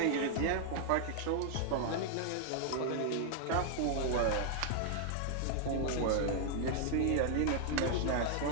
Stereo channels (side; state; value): both; different; correlation 0.00